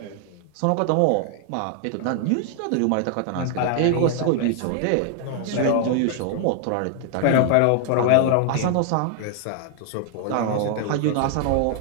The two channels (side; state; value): both; different; correlation 0.00